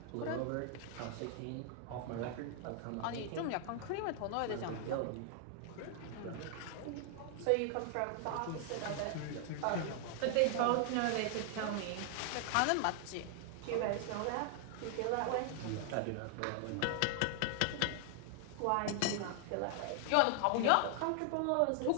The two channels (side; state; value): both; different; correlation 0.00